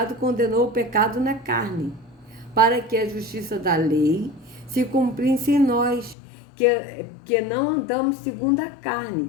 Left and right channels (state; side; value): drops out; right; at 6.2 s